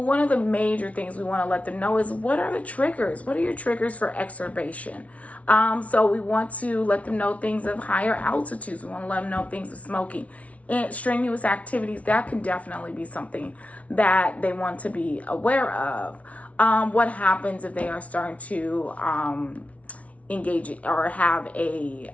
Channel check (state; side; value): late; right; 0.066 ms